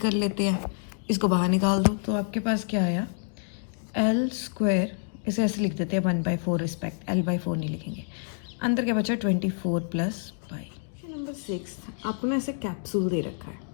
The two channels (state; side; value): silent; right; digital silence